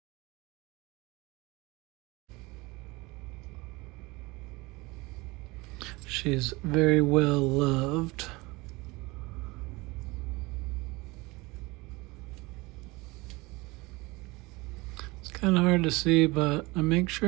She's very well loved. It's kind of hard to see, but I make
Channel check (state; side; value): quieter; left; 23.2 dB